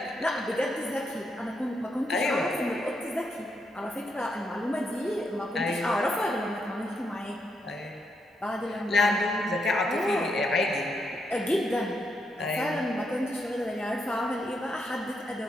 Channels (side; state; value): both; normal; correlation 0.79